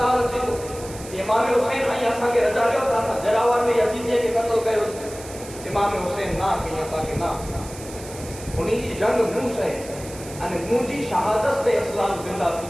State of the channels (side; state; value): right; noise; hiss, 15 dB below the sound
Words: اچھے تو امام حسین آئی ایسا کے رجا لے ہوتا سا جراوار میں یزیدیے کے قتل گئے ہوتے امام حسین نہ کہیں تاکہ نہ انہی کی جنگ منہ سے منہ جی شہادت سے اسلام زندہ تھی